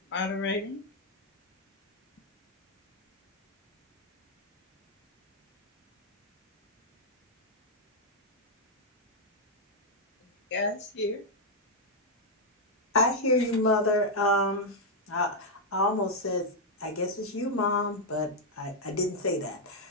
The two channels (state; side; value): normal; both; correlation -0.02